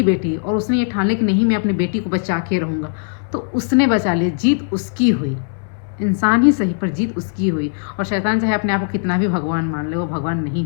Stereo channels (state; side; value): silent; right; 67 dB below the other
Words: बेटी, और उसने ये ठान लिया कि नहीं मैं अपनी बेटी को बचा के रहूँगा, तो उसने बचा लिया, जीत उसकी हुई, इंसान ही सही पर जीत उसकी हुई। और शैतान चाहे अपने आप को कितना भी भगवान मान ले, वो भगवान नहीं